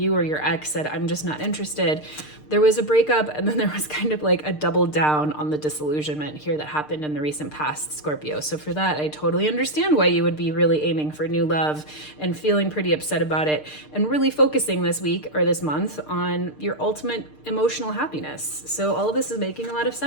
or your ex said, I'm just not interested. There was a breakup, and then there was kind of like a double down on the disillusionment here that happened in the recent past, Scorpio. So for that, I totally understand why you would be really aiming for new love and feeling pretty upset about it, and really focusing this week or this month on your ultimate emotional happiness. So all of this is making a lot of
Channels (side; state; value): right; late; 6.6 ms